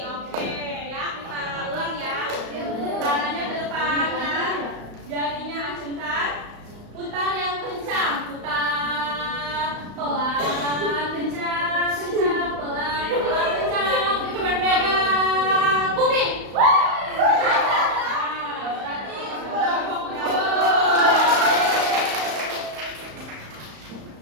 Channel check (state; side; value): late; left; 35 ms